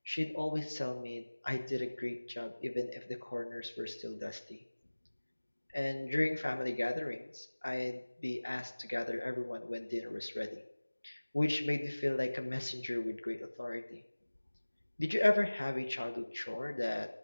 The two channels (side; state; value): both; inverted; correlation -1.00